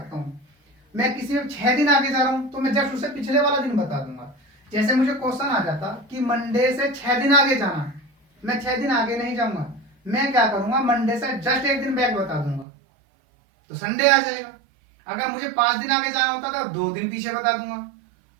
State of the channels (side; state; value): left; drops out; at 12.7 s